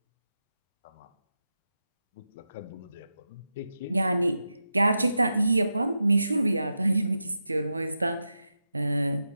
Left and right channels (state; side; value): inverted; both; correlation -0.90